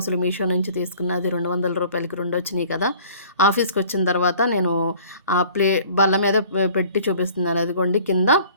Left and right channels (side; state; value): both; inverted; correlation -0.51